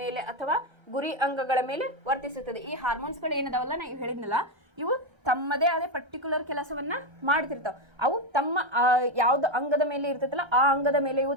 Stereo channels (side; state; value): left; late; 1.3 ms